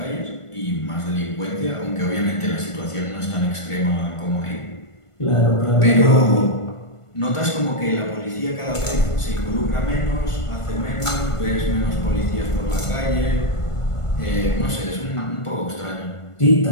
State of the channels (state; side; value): late; right; 1.5 ms